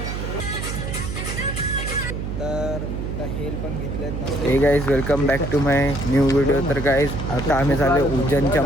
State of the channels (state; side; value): noise; right; hum, 4 dB below the sound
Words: तर हेल पण घेतलेत. Hey guys welcome back to my new video. तर गाईज आता आम्ही झालो उज्जैनच्या